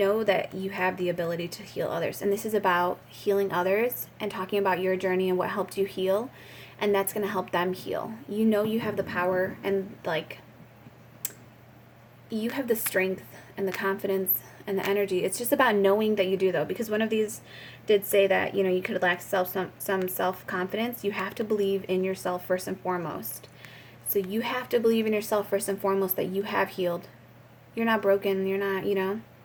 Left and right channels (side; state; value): both; identical; correlation 1.00